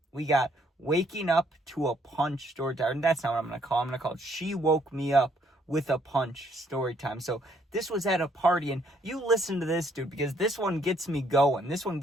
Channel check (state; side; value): normal; both; correlation 0.68